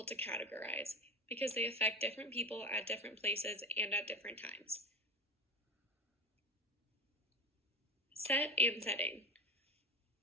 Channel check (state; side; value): normal; both; correlation 0.27